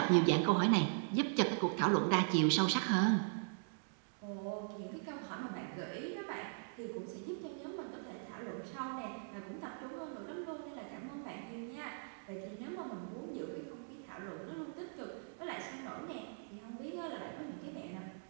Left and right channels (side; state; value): left; silent; digital silence